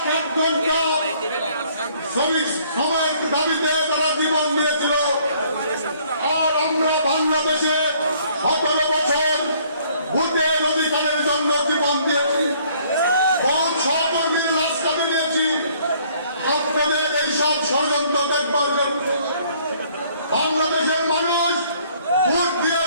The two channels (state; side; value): inverted; both; correlation -0.61